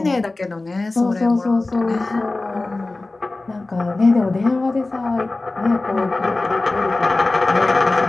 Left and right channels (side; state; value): right; quieter; 3.2 dB